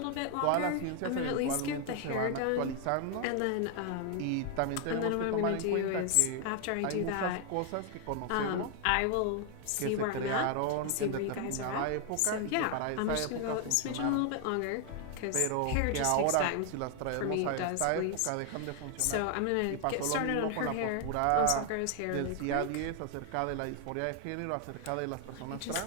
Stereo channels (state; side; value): different; both; correlation 0.00